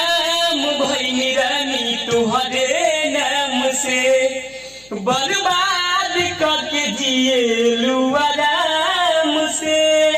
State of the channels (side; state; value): left; noise; hum, 28 dB below the sound